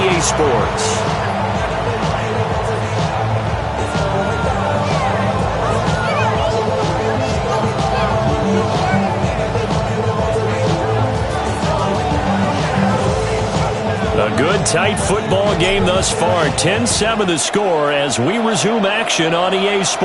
EA Sports. Good, tight football game thus far. 10-7 the score as we resume action on EA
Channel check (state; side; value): identical; both; correlation 1.00